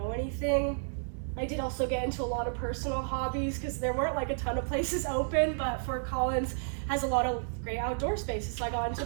anything, I did also get into a lot of personal hobbies because there weren't like a ton of places open, but Fort Collins has a lot of great outdoor spaces. So I got into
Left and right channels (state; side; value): silent; left; 57 dB below the other